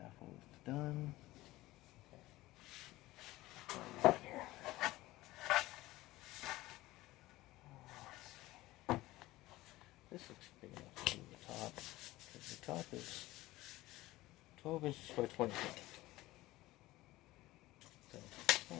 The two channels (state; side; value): quieter; right; 18.0 dB